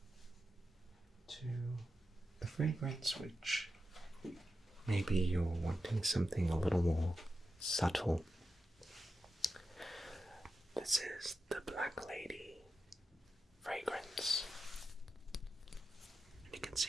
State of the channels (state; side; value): normal; both; correlation 0.90